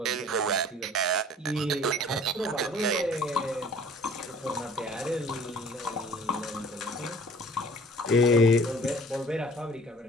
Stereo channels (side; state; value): both; normal; correlation 0.50